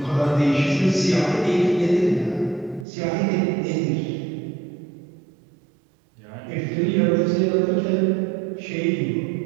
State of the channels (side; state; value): left; drops out; at 2.9 s